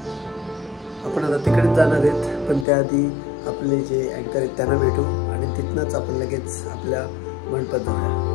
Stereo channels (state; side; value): drops out; right; at 2.7 s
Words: आपण आता तिकडेच जाणार आहेत, पण त्याआधी आपले जे अँकर आहेत त्यांना भेटू आणि तिथनंच आपण लगेच आपल्या मंडपात जाऊया.